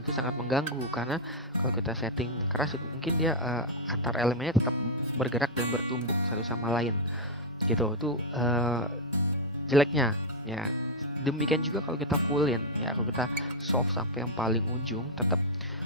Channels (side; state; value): both; normal; correlation -0.02